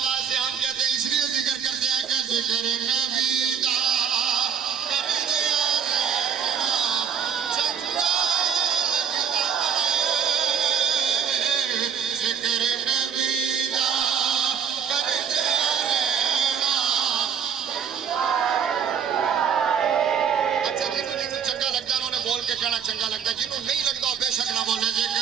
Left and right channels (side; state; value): left; quieter; 7.5 dB